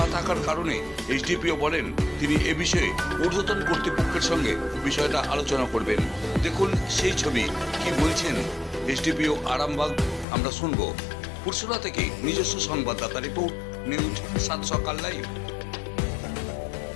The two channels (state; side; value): drops out; right; at 10.2 s